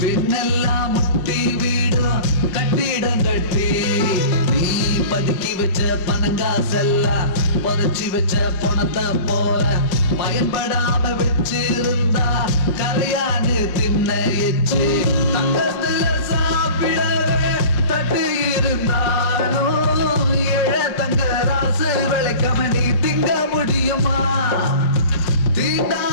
பின்னெல்லாம் முட்டி வீடும் கட்டிடம் கட்டி நீ பதுக்கி வச்ச பணங்காசெல்லாம் புதைச்சி வச்ச பணத்தை போல பயன்படாம வச்சிருந்தா கரையான்னு தின்ன எச்சு. தங்கத்துல சாப்பிடவே தட்டு இருந்தாலும் ஏழை தங்க ராசு விளைக்காம நீ திங்க முடியுமா?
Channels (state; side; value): late; right; 5.0 ms